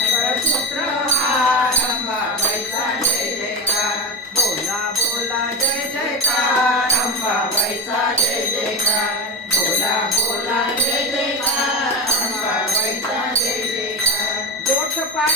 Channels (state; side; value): normal; both; correlation 0.18